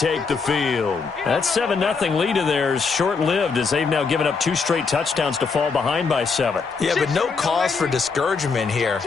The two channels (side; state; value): right; quieter; 5.0 dB